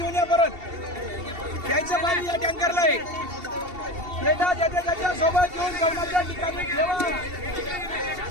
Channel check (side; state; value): left; late; 2.7 ms